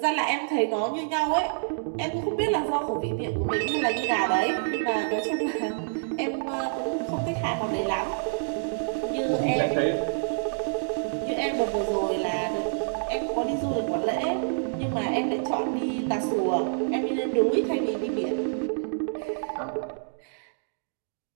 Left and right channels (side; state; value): left; silent; digital silence